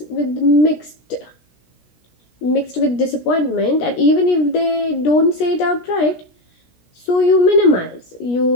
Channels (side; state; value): right; late; 17 ms